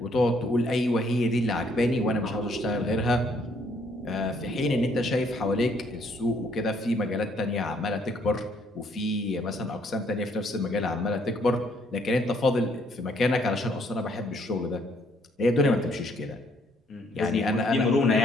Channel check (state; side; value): normal; both; correlation 0.67